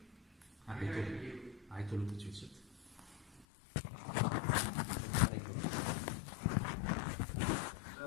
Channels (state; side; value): drops out; right; at 3.5 s